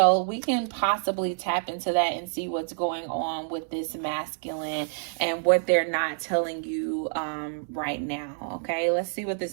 we can possibly tap into that and see what's going on with this masculine and what they're not telling you right now. Okay, let's see what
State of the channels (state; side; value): silent; left; digital silence